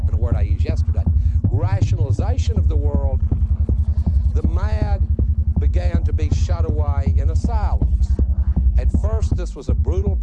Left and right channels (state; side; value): identical; both; correlation 1.00